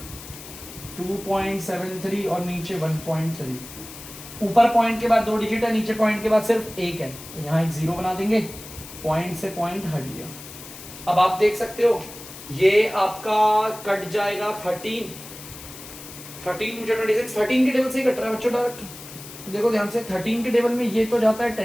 2.73 और नीचे 1.3। ऊपर पॉइंट के बाद 2 डिजिट है, नीचे पॉइंट के बाद सिर्फ एक है, तो यहाँ एक 0 बना देंगे, पॉइंट से पॉइंट हट गया। अब आप देख सकते हो ये आपका कट जाएगा 13 2 जा 26, 13 के टेबल से ही कट रहा है बच्चों डायरेक्ट। देखो ध्यान से 13 के टेबल में ये तो जाता है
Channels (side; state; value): left; noise; hiss, 15 dB below the sound